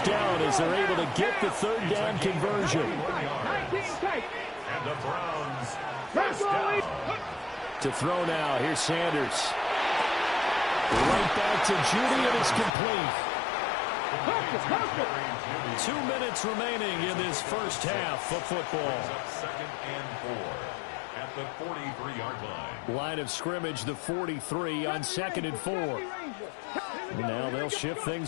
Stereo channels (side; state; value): right; drops out; at 12.7 s